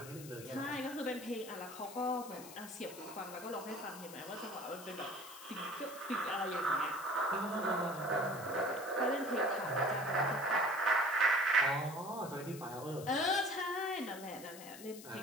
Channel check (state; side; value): noise; left; hiss, 15 dB below the sound